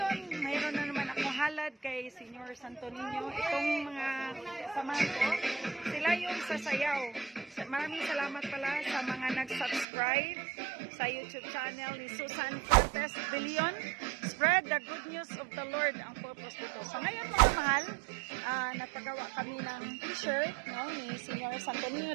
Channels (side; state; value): left; drops out; at 9.9 s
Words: mayroon na naman akong halad kay Senior Santo Niño. Itong mga samahan ko, sila yung sasayaw. Maraming salamat pala sa mga nag-subscribe sa YouTube channel ni Susan Cortez Billion. Spread the good news of the Lord ang purpose dito. So ngayon mga mahal, nagpagawa kami ng t-shirt, no, ni Senior Santo Niño